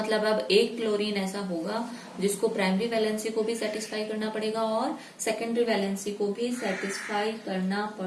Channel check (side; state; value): both; identical; correlation 1.00